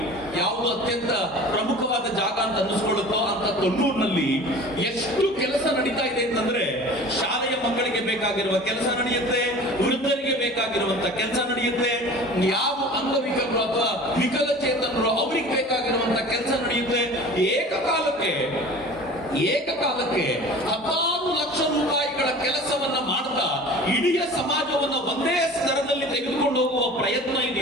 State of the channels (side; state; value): both; normal; correlation 0.41